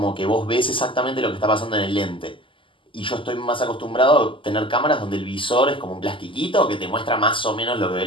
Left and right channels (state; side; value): late; right; 0.25 ms